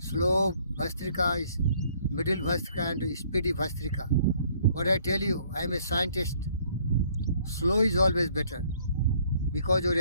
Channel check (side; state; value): both; inverted; correlation -0.62